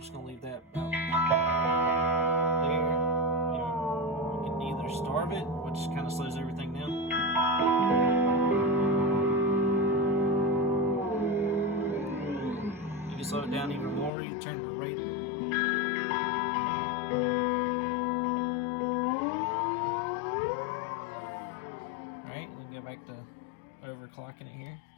going to leave that about there. You can either starve it, which kind of slows everything down. You can slow it down even more. You can turn the rate. Alright, we can go back to overclocking it here.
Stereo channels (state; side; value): drops out; right; at 14.1 s